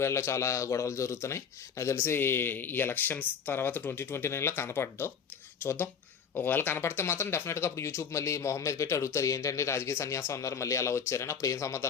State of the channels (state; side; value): quieter; right; 6.9 dB